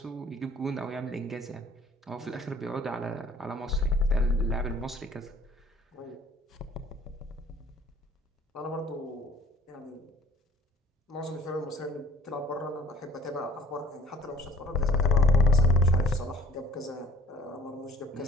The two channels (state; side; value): normal; both; correlation 0.52